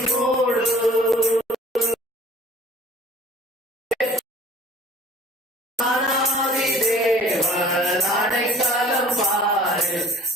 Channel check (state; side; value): normal; both; correlation 0.49